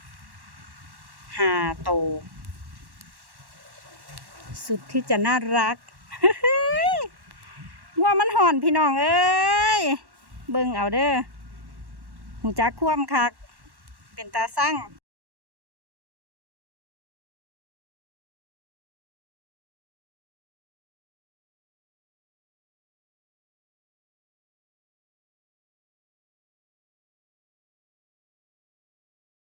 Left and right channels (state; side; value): late; left; 1.1 ms